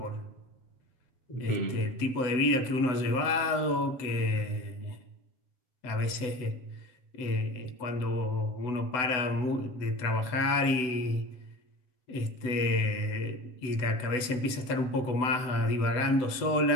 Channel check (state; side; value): late; right; 7.9 ms